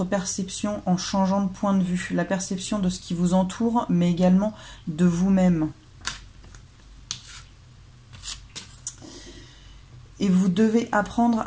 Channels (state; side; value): identical; both; correlation 1.00